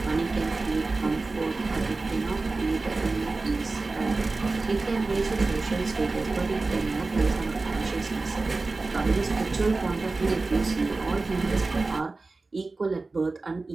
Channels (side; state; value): left; quieter; 3.6 dB